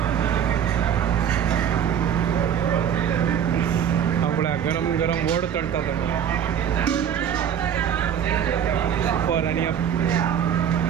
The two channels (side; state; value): left; quieter; 8.9 dB